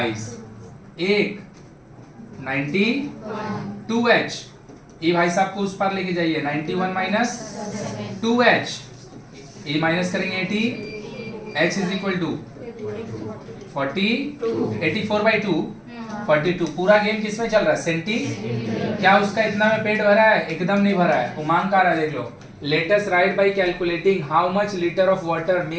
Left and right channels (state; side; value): identical; both; correlation 1.00